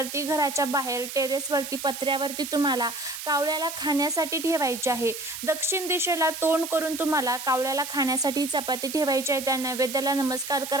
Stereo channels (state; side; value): noise; right; hiss, 8 dB below the sound